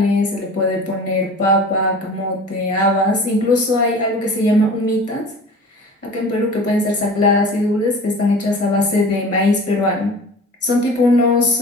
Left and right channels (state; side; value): normal; both; correlation 0.40